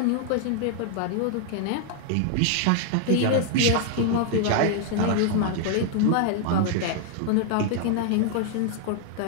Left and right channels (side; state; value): both; different; correlation 0.00